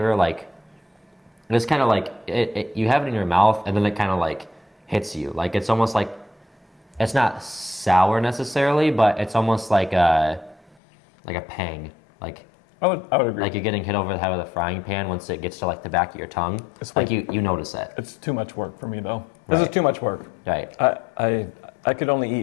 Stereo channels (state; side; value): drops out; right; at 10.8 s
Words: like, it's kind of like you have it in your mouth and then it kind of like hits you. Like it's almost like it's not sour necessarily, but it's almost like a pang. Like I would agree. like you're getting hit over the head with a frying pan once it gets to like the back of your tongue. It's like like- you notice it. It's too much work for me though. This is Right. too much work. Right. I could only